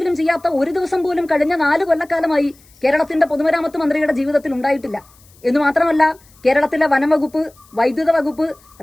ചെയ്യാത്ത ഒരു ദിവസം പോലും കഴിഞ്ഞ 4 കൊല്ലക്കാലമായി കേരളത്തിന്റെ പൊതുമരാമത്ത് മന്ത്രിയുടെ ജീവിതത്തിൽ ഉണ്ടായിട്ടില്ല. എന്ന് മാത്രമല്ല, കേരളത്തിലെ വനം വകുപ്പ്, വൈദ്യുത വകുപ്പ്,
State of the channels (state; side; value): noise; left; hiss, 29 dB below the sound